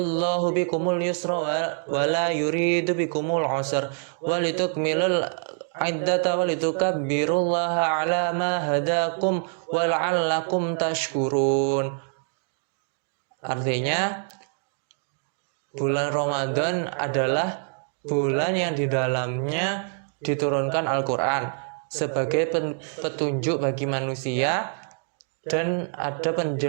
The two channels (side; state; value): left; silent; 61 dB below the other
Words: bikumul yusra wa la yuridu bikumul usra walitukmilul iddata walitukabbirullaha ala ma hadakum wa la'allakum tashkurun. Artinya, bulan Ramadan adalah bulan yang di dalamnya diturunkan Al-Quran sebagai petunjuk bagi manusia, dan ada